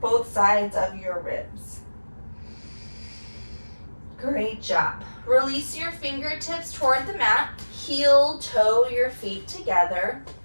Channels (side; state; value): both; inverted; correlation -1.00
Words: sides of your ribs. Great job. Release your fingertips toward the mat. Heel, toe your feet together.